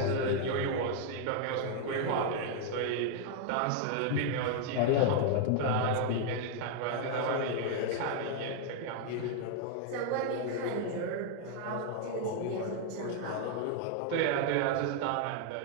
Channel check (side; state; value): both; different; correlation 0.00